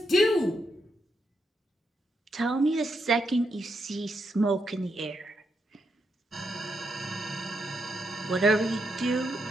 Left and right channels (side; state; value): both; normal; correlation 0.81